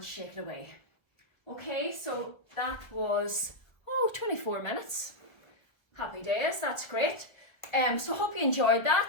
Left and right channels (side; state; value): right; late; 1.6 ms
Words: shake it away. Okay, so that was 24 minutes. Happy days, that's great. So hope you enjoyed